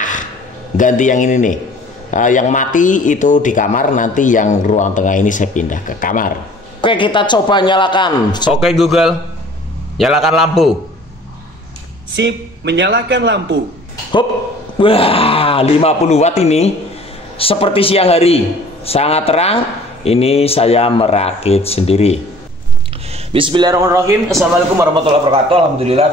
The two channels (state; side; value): normal; both; correlation 0.50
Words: Ganti yang ini nih, yang mati itu di kamar, nanti yang ruang tengah ini saya pindah ke kamar. Oke, kita coba nyalakan. Oke Google, nyalakan lampu. Sip, menyalakan lampu. Hop. Wah, 50 watt ini seperti siang hari, sangat terang. Ini saya merakit sendiri. Bismillahirrahmanirrahim. Assalamualaikum warahmatullahi wabarakatuh.